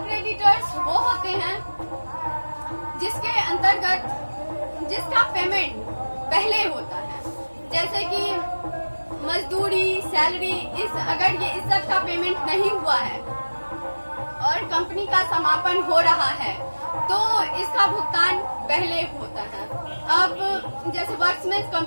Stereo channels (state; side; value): inverted; both; correlation -1.00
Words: क्रेडिटर्स वो होते हैं जिसके अंतर्गत जिसका पेमेंट पहले होता है, जैसे कि मजदूरी, सैलरी, अगर ये इस सब का पेमेंट नहीं हुआ है और कंपनी का समापन हो रहा है तो इसका भुगतान पहले होता है। अब जैसे वर्कमैन